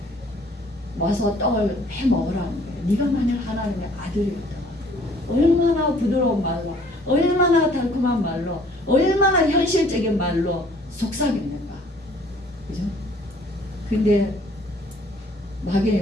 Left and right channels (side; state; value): both; normal; correlation 0.57